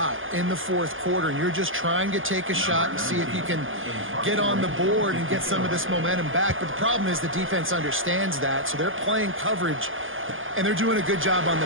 in the fourth quarter, and you're just trying to take a shot and see if you can get on the board and get some of this momentum back. But the problem is the defense understands that, so they're playing coverage, and they're doing a good job on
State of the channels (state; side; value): late; left; 0.58 ms